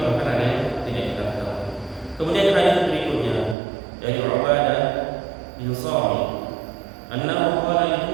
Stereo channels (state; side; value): drops out; left; at 3.6 s